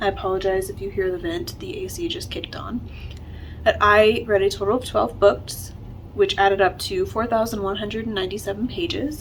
I apologize if you hear the vent, the AC just kicked on. But I read a total of 12 books, which added up to 4,197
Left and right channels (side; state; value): both; identical; correlation 1.00